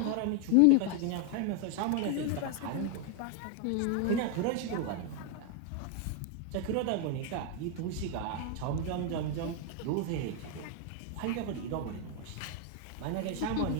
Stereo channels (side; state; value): both; different; correlation 0.01